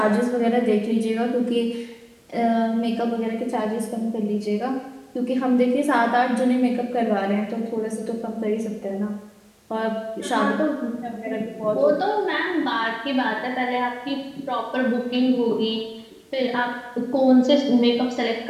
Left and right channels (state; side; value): identical; both; correlation 1.00